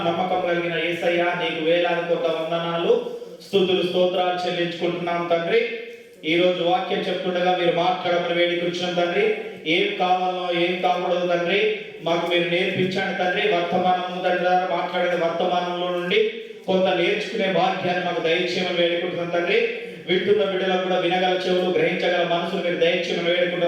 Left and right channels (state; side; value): identical; both; correlation 1.00